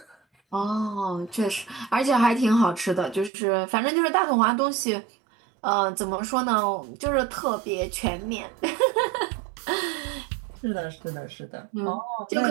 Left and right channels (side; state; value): left; drops out; at 3.3 s